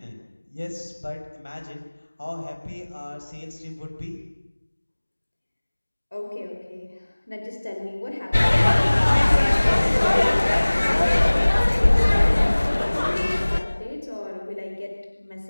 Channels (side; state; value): both; inverted; correlation -1.00